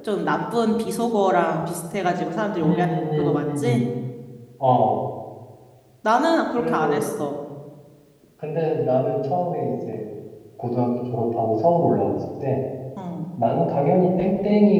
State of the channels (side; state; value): both; identical; correlation 1.00